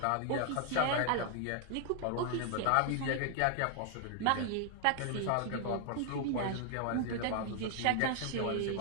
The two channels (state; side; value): different; both; correlation 0.00